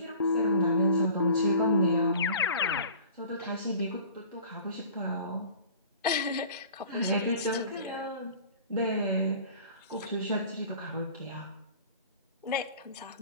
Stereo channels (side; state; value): both; inverted; correlation -0.45